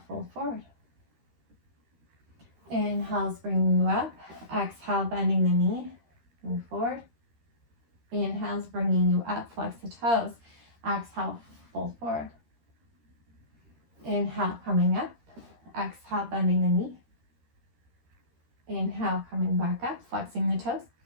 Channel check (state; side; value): late; left; 13 ms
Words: fold forward. Inhale's bringing you up. Exhale, bending the knee, move forward. Inhale's bringing you up, flex the toes. Exhale, fold forward. Inhale, coming up. Exhale, bending the knee. Inhale, coming back up, flexing the toes.